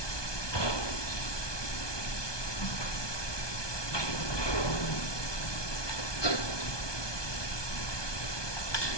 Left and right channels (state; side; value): late; right; 1.2 ms